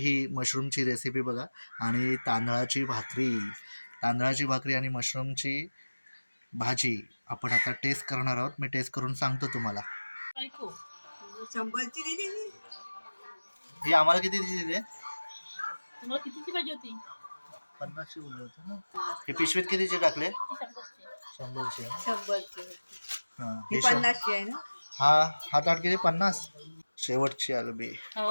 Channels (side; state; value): both; inverted; correlation -1.00